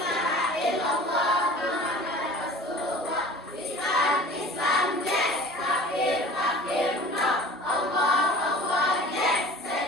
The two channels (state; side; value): normal; both; correlation 0.42